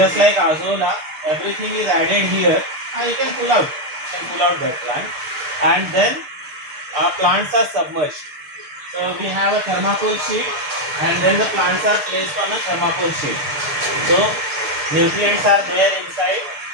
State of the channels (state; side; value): late; left; 6.7 ms